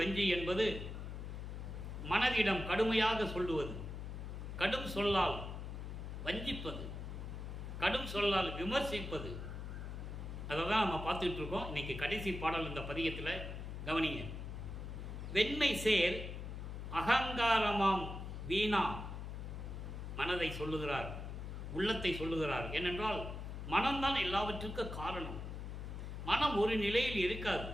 என்பது மனதிடம் கடுமையாக சொல்லுவது, கடும் சொல்லால் வஞ்சிப்பது, கடும் சொல்லால் விமர்சிப்பது. அதை தான் நம்ம பார்த்துட்டு இருக்கோம். இன்னைக்கு கடைசி பாடல் இந்த பதிகத்தில் கவனிங்க. வெண்மை சேர் அகங்காரமாம் வீணா, மனதை சொல்லுகிறார், உள்ளத்தை சொல்லுகிறார். ஏனென்றால் மனம்தான் எல்லாவற்றிற்கும் காரணம். மனம் ஒரு நிலையில் இருக்காது.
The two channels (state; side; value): noise; left; hum, 7 dB below the sound